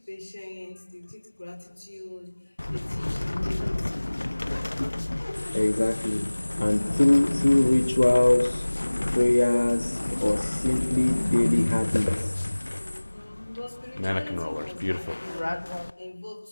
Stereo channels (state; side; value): inverted; both; correlation -1.00